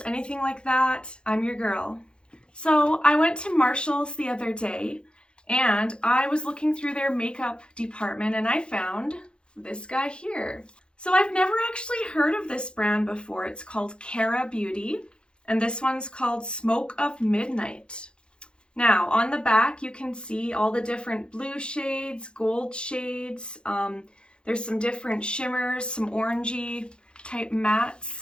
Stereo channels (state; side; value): late; right; 0.053 ms